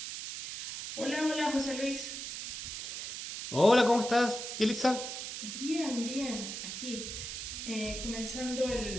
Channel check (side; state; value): right; noise; hiss, 6 dB below the sound